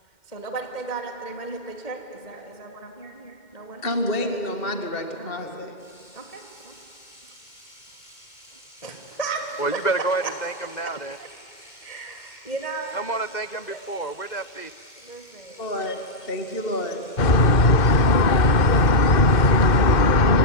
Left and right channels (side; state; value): right; late; 2.1 ms